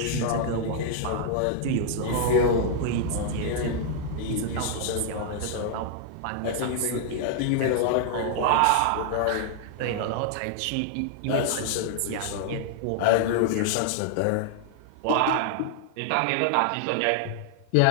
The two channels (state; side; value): different; both; correlation 0.00